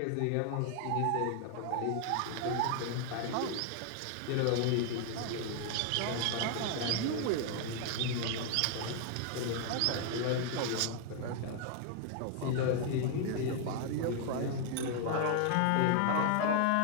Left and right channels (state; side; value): different; both; correlation 0.00